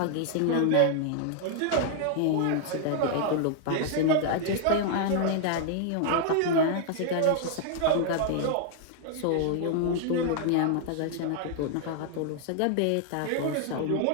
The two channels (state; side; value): different; both; correlation 0.00